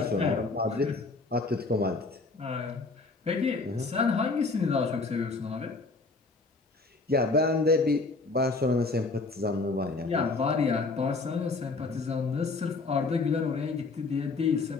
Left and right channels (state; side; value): quieter; right; 3.7 dB